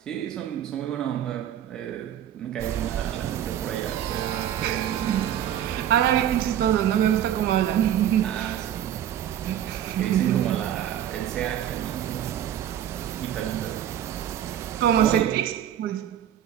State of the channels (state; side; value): quieter; left; 10.6 dB